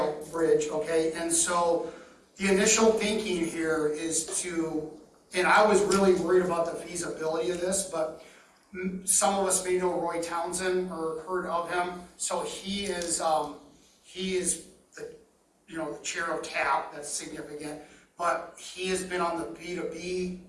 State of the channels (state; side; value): identical; both; correlation 1.00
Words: bridge, okay? And so the initial thinking here is to, and I was really worried about the feasibility of this, but some of us may know Roy Townsend or heard of him. So he is the, the chair of TAP, that's significant. But he has been on the